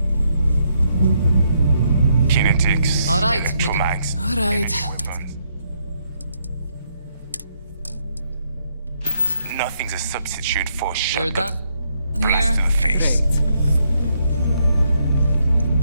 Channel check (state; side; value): inverted; both; correlation -0.75